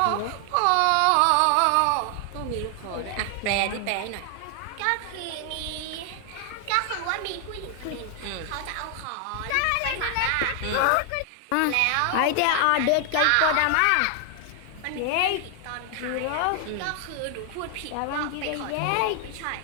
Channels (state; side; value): different; both; correlation 0.00